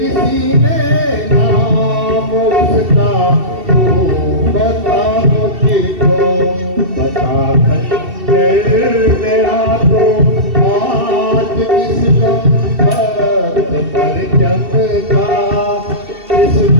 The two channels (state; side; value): late; left; 2.7 ms